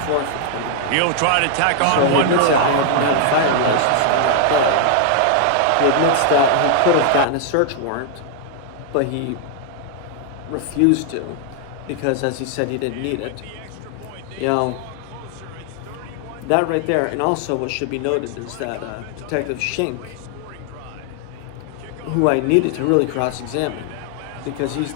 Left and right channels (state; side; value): different; both; correlation 0.00